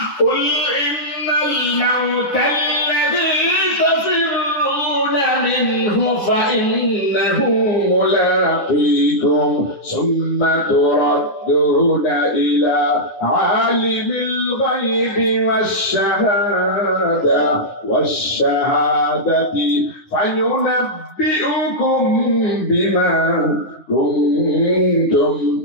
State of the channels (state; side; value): late; right; 9.8 ms